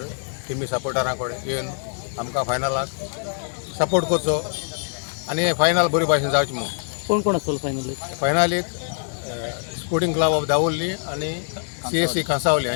टिमी सपोर्टरांकडे येवन आमकां फायनलाक सपोर्ट करचो आणि हे फायनल बरी भाशेन जावचें म्हणून. कोण कोण असेल फायनल? फायनलीक स्पोर्टिंग क्लब ऑफ दावोली आणि CSC कांसावली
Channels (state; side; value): silent; right; digital silence